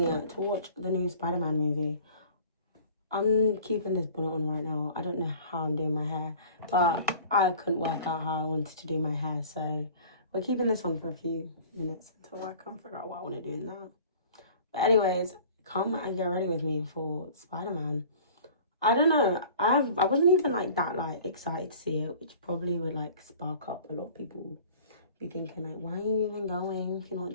to watch the new Spider-Man movie. I'm keeping this bonnet on right now. I don't know how I'm doing my hair, but I couldn't work out how I wanted to do my hair, so we're keeping this on for a few minutes until I can't figure out what I want to do in that. But anyways, come and get ready with me for Spider-Man. I don't know. I wasn't even like that excited to see it, which probably would like spark up a lot of people be thinking like, why are you even going if you're not a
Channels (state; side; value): inverted; both; correlation -0.46